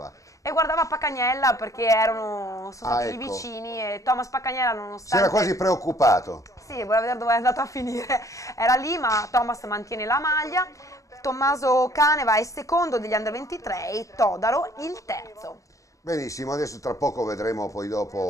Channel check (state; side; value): late; right; 0.16 ms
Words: E guardava Paccagnella perché sono stati lì vicini, e Thomas Paccagnella nonostante... Si era quasi preoccupato. Sì, voleva vedere dove è andato a finire, era lì, ma Thomas mantiene la maglia. Tommaso Caneva è secondo degli under 23 e Todaro il terzo. Benissimo, adesso tra poco vedremo poi